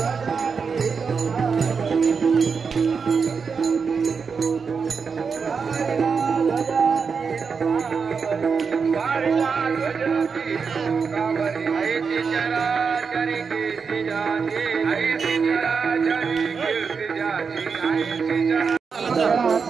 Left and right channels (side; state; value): left; quieter; 5.6 dB